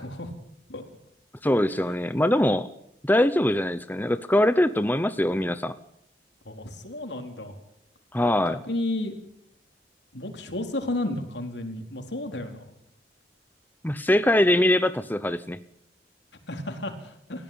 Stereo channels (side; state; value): both; normal; correlation 0.81